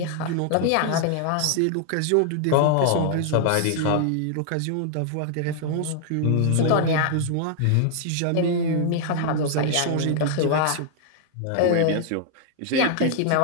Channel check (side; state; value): both; different; correlation 0.00